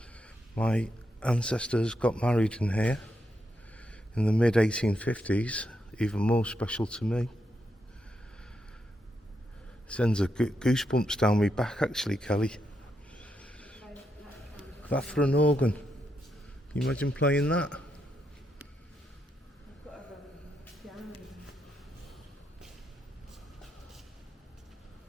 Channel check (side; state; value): both; normal; correlation 0.82